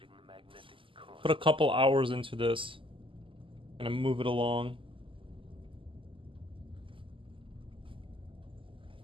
put a couple hours into this and move it along.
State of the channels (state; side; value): late; left; 0.25 ms